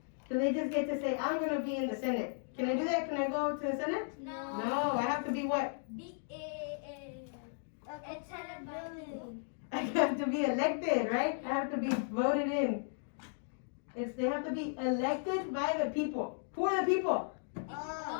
Do they just get to say, I'm going to be in the Senate? Can I do that? Can I go to the Senate? No, I have to be what? I have to be elected, right? I have to be voted in. They have to be elected by the people. Who are the people?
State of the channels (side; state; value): right; silent; digital silence